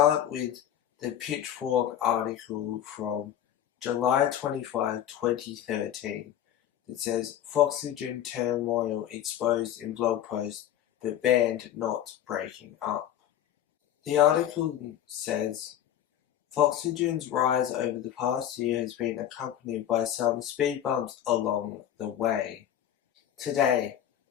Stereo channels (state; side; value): quieter; right; 10.8 dB